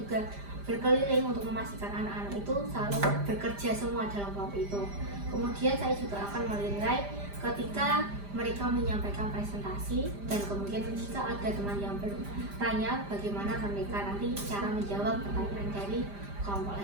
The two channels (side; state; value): left; late; 5.0 ms